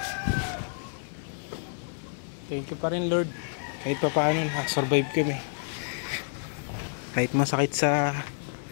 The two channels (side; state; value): right; silent; digital silence